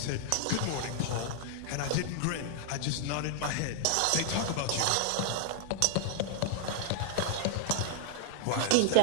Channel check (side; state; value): both; different; correlation 0.00